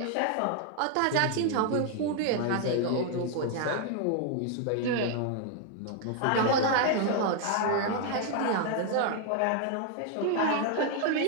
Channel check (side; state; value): both; different; correlation 0.00